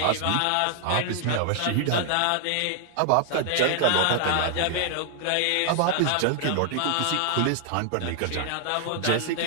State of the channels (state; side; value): different; both; correlation 0.00